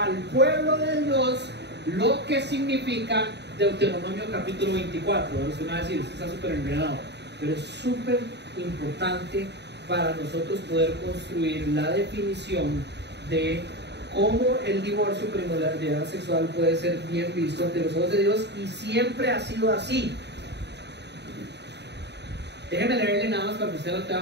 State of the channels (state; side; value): late; left; 0.50 ms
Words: pueblo de Dios lo que significa Deuteronomio capítulo 24. Usted me va a decir, está súper enredado, pero es súper importante para nosotros poder construir la definición de cómo el divorcio por inmoralidad sexual puede ser bien visto ante los ojos de Dios, y siempre ha sido así. Déjeme leerle nada más para que usted lo